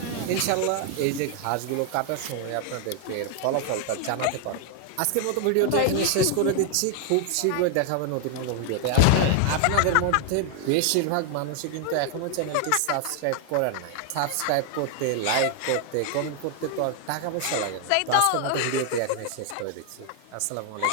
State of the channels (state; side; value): different; both; correlation 0.00